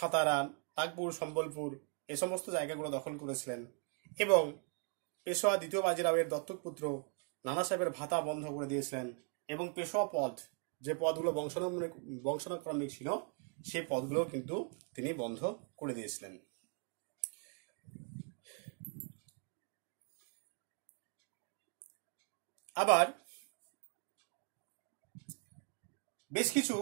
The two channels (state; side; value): quieter; left; 38.3 dB